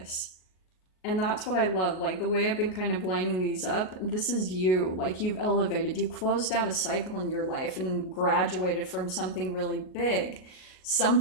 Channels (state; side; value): late; right; 38 ms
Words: And that's what I love. Like, the way I've been kind of lining these up, this is you. Like, you've elevated. You closed out a cycle in your life and graduated from something really big.